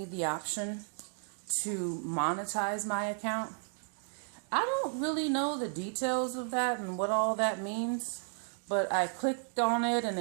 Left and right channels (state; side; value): silent; left; 55 dB below the other